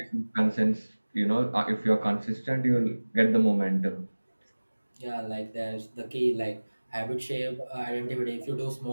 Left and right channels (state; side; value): inverted; both; correlation -1.00